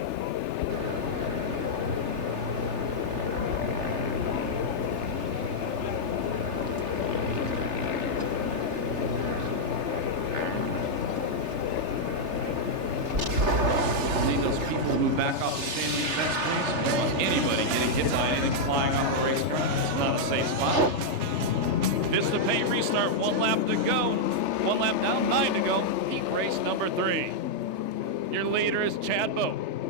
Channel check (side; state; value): left; late; 3.3 ms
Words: See those people move back off the standing fence. Anybody getting hit by anything flying off the racetrack? It's not a safe spot. Vista Pay restart, 1 lap to go. 1 lap down, 9 to go. Heat race number 3. Your leader is Chad Boat.